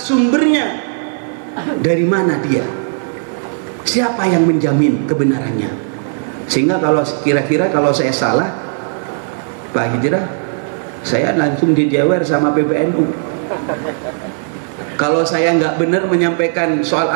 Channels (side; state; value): left; silent; 57 dB below the other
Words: sumbernya. Dari mana dia? Siapa yang menjamin kebenarannya? Sehingga kalau kira-kira kalau saya salah, Pak Hijrah, saya langsung dijewer sama PBNU. Kalau saya nggak benar menyampaikan soal